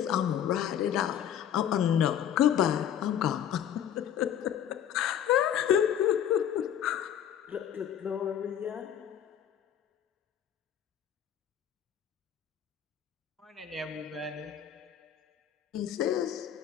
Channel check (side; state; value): right; quieter; 9.7 dB